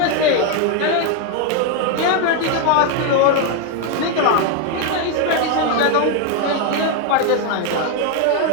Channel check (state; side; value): different; both; correlation 0.01